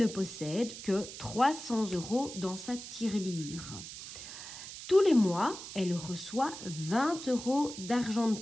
possède que 300 € dans sa tirelire. Tous les mois, elle reçoit 20 € d'argent de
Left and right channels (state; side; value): noise; right; hiss, 11 dB below the sound